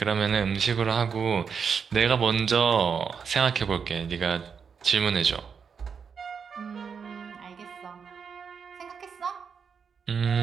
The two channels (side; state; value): left; quieter; 6.3 dB